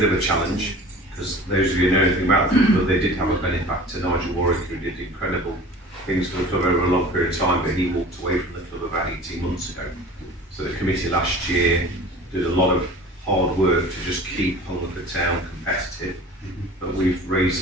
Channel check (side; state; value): both; normal; correlation 0.42